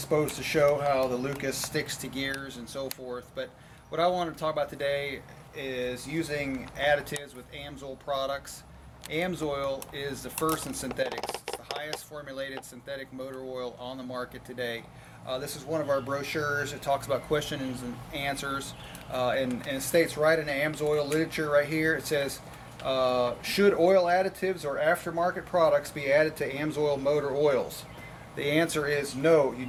to show how the Lucas sticks to gears and so forth. But what I want to talk about today is using additives with AMSOIL products. AMSOIL is the first in synthetics. It's the highest formulated synthetic motor oil on the market today. This is one of our brochures. It talks about questions and answers, and it states right in the AMSOIL literature right here, it says, should oil additives or aftermarket products be added to AMSOIL motor oils? The answer is no, you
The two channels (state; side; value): identical; both; correlation 1.00